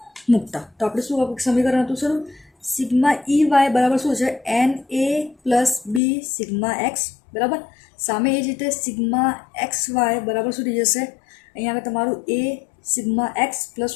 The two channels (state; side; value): drops out; right; at 6.0 s